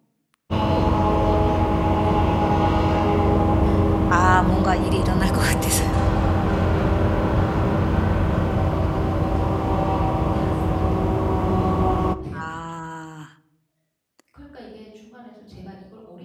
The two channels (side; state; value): both; identical; correlation 1.00